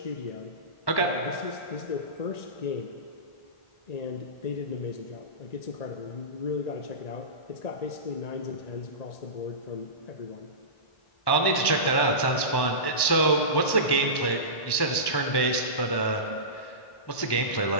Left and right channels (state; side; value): late; right; 1.1 ms